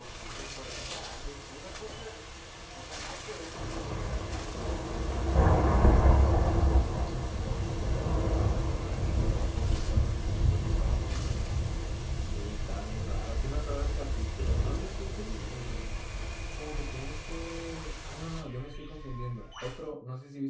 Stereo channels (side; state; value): both; identical; correlation 1.00